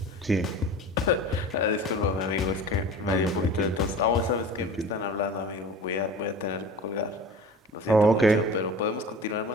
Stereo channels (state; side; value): normal; both; correlation 0.38